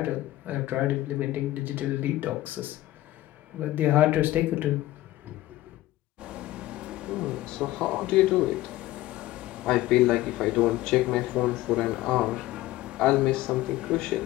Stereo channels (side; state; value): right; quieter; 16.3 dB